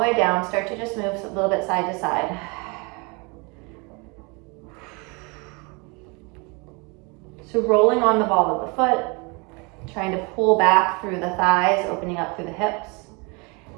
down, start to just move a little bit side to side. So rolling on the ball of the foot, trying to pull back through the thighs, opening up through the hips.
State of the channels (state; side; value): quieter; left; 29.8 dB